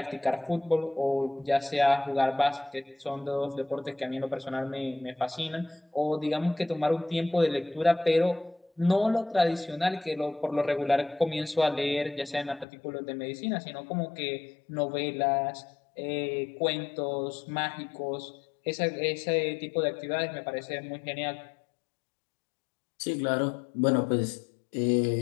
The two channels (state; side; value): drops out; right; at 12.7 s